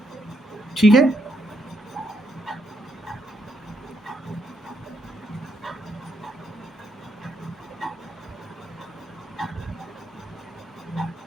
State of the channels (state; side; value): normal; both; correlation 0.77